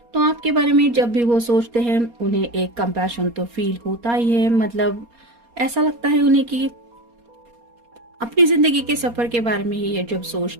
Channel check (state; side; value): late; left; 4.3 ms